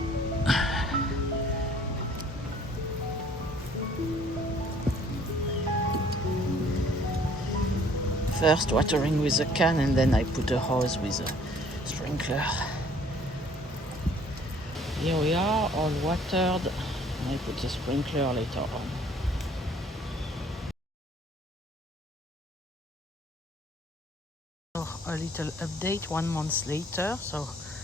First watering with a can and then I put a hose with a sprinkler. Here we are, all watered, and I put a sprinkler later on. So a little update 1 month later, so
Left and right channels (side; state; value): both; normal; correlation 0.57